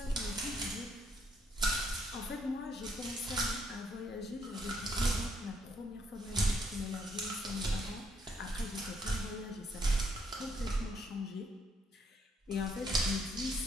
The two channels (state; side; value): normal; both; correlation 0.71